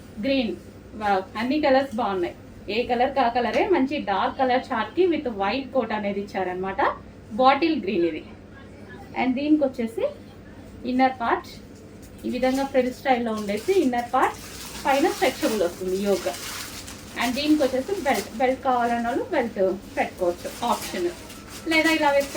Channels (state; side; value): identical; both; correlation 1.00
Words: అన్ని కలర్స్ బాగున్నాయి, ఏ కలర్ కా కలరే. మంచి డార్క్ కలర్ చార్ట్కి విత్ వైట్ కోట్ అనేది ఇచ్చారనమాట, బాటిల్ గ్రీన్ ఇది. అండ్ దీనికి వచ్చేసి ఇన్నర్ పార్ట్ ఈ విధంగా ఫ్రిల్ స్టైల్లో ఉండేసి ఇన్నర్ పార్ట్ పైన స్ట్రెచబుల్ వస్తుంది యోగ. అండ్ దీనికి వచ్చేసి బెల్ట్ కావాలన్న వాళ్ళు బెల్ట్ పెట్టుకోవచ్చు ఆప్షన్, లేదా ఇలా